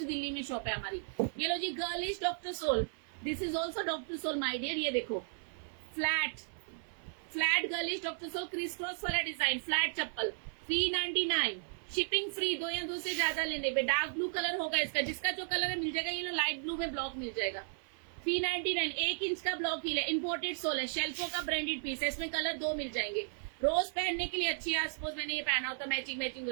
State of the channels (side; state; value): left; silent; 55 dB below the other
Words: दिल्ली में शॉप है हमारी। ये लो जी, girlish doctor sole, this is also doctor sole my dear. ये देखो flat girlish doctor sole, crystals वाला डिजाइन, फ्लैट चप्पल, 399, शिपिंग फ्री। 2 या 2 से ज्यादा लेने पे। डार्क ब्लू कलर होगा इसका, जिसका जो कलर है मिल जाएगा। ये लो लाइट ब्लू में ब्लॉक मिल जाएगा। 399, 1 इंच का ब्लॉक हील है, इम्पोर्टेड सोल है, शेल्फो का ब्रांडेड पीस है। इसमें कलर 2 मिल जाएंगे। रोज पहनने के लिए अच्छी है। सपोज मैंने ये पहना होता, मैचिंग हो